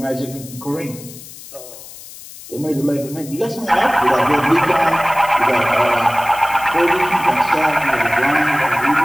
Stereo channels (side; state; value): left; noise; hiss, 16 dB below the sound